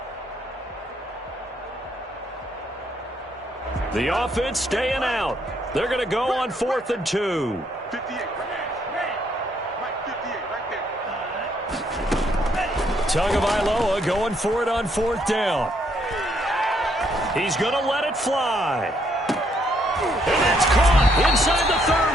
The offense staying out. They're going to go on 4th and 2. 58, right 58, right there. Tagovailoa going for it on 4th down. He's going to let it fly. And that's caught inside the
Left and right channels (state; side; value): normal; both; correlation 0.71